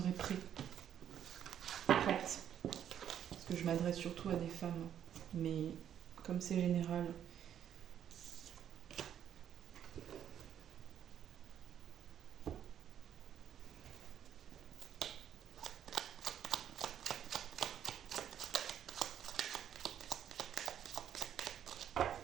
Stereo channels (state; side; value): quieter; left; 9.7 dB